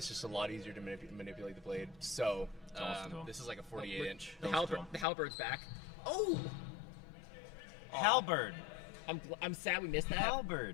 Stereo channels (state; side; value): drops out; right; at 5.1 s